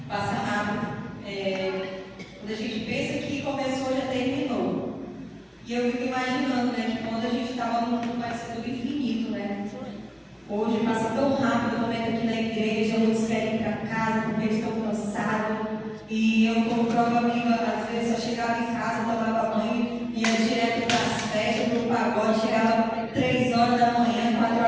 Passa rápido. Quando a gente pensa que começou, já terminou. E eu fico imaginando, né, que quando a gente estava no mundo parecendo do infinito, né? Hoje passa tão rápido o momento aqui na igreja, muitos querem ir para casa porque estão cansados. E eu, como prova viva, às vezes eu chegava em casa, tomava banho, ia direto para as festas, para o pagode, chegava 3 horas da manhã, 4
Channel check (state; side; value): identical; both; correlation 1.00